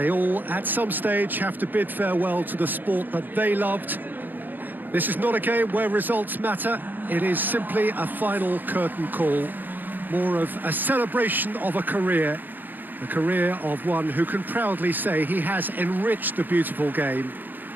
all, at some stage, have to bid farewell to the sport that they loved. This is not a game where results matter. It is simply a final curtain call, more of a celebration of a career of one who can proudly say he has enriched the beautiful game.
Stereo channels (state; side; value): late; left; 0.088 ms